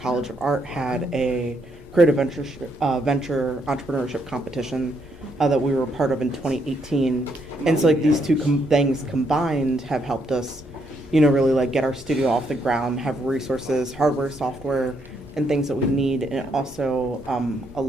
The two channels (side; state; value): both; normal; correlation 0.75